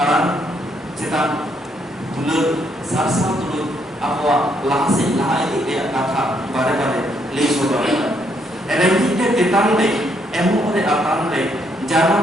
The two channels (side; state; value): both; normal; correlation 0.73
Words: cetak dulur sarsa dulur apa lahasi lahai dia kata bare le sodara erengi te tetang le emu ore atan le